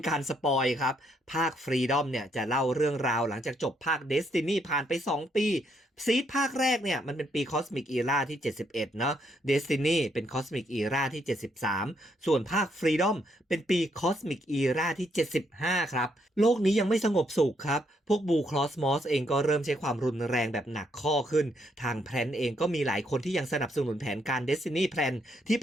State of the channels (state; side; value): normal; both; correlation 0.74